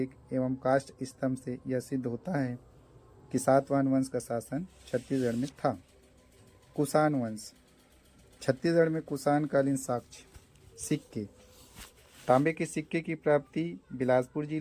एवं काष्ठ स्तंभ से यह सिद्ध होता है कि सातवाहन वंश का शासन छत्तीसगढ़ में था। कुषाण वंश छत्तीसगढ़ में कुषाण कालीन साक्ष्य सिक्के। तांबे के सिक्के की प्राप्ति बिलासपुर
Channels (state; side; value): identical; both; correlation 1.00